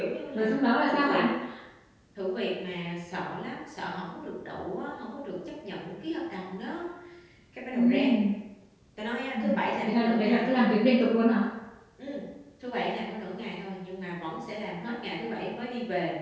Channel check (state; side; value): identical; both; correlation 1.00